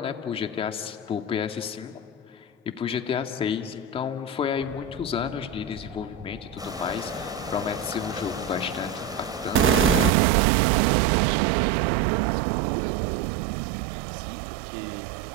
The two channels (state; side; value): drops out; left; at 10.1 s